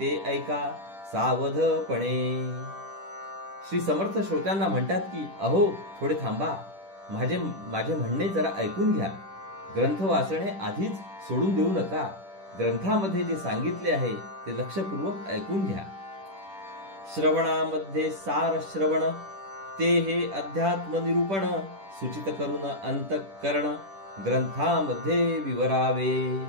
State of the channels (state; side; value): late; left; 10 ms